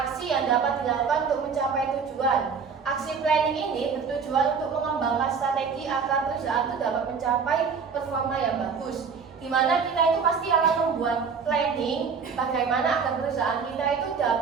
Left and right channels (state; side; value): quieter; left; 5.8 dB